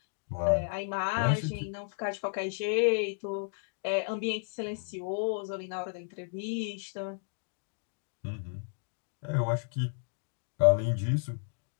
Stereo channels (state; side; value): silent; right; digital silence